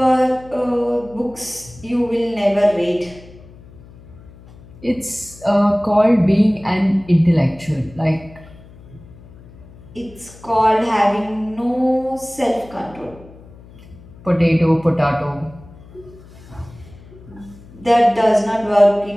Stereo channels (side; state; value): left; noise; hum, 21 dB below the sound